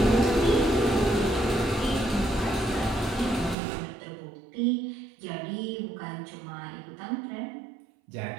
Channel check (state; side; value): drops out; left; at 3.6 s